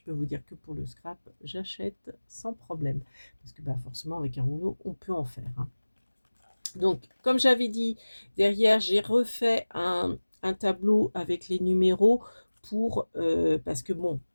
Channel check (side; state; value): both; inverted; correlation -1.00